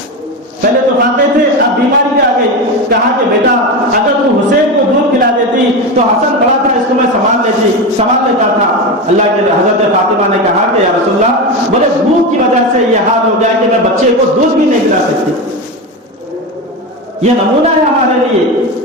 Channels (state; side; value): normal; both; correlation 0.19